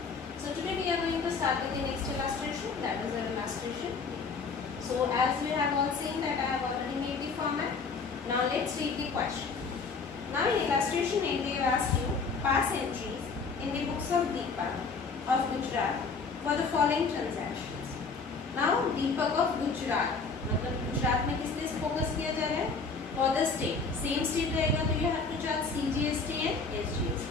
So today we are going to start with the next illustration. That is our illustration. So as we have all seen that I have already made the format. Now let's read the question. Now in illustration A, they have asked you pass entries in the books of Deepak of Gujarat for the following transactions. Now Deepak of Gujarat, मतलब गुजरात में किस लिए focus किया जा रहा है? For the state, same state रहेगा तो you have to charge CGST and SGST,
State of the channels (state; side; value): quieter; right; 4.6 dB